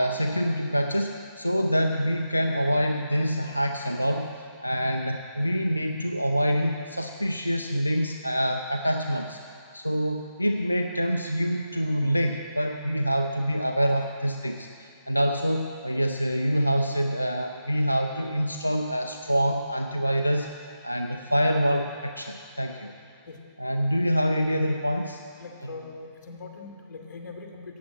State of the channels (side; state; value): both; inverted; correlation -0.91